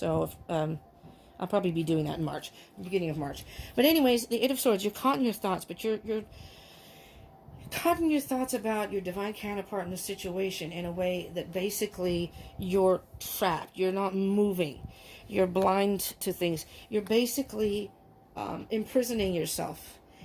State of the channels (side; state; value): both; identical; correlation 1.00